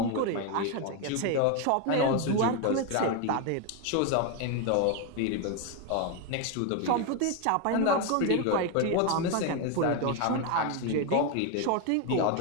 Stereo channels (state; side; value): different; both; correlation 0.02